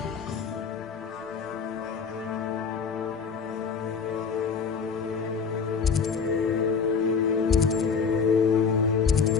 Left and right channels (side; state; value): right; quieter; 5.8 dB